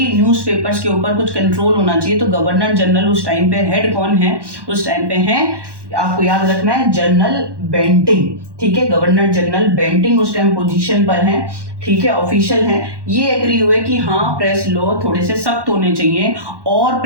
न्यूज़पेपर्स के ऊपर कुछ कंट्रोल होना चाहिए, तो गवर्नर जनरल उस टाइम पे हेड कौन है, उस टाइम पे हैं, आपको याद रखना है, जनरल बेंटिंग, ठीक है, गवर्नर जनरल बेंटिंग उस टाइम पोजीशन पर हैं, ठीक है, ऑफिशियल हैं। ये एग्री हुए कि हाँ प्रेस लॉ थोड़े से सख्त होने चाहिए और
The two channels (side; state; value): left; late; 1.1 ms